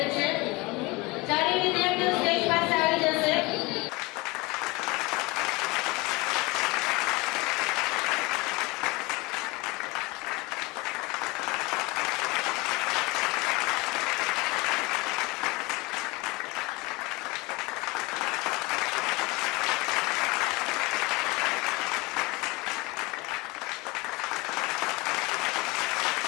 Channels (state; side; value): quieter; right; 24.1 dB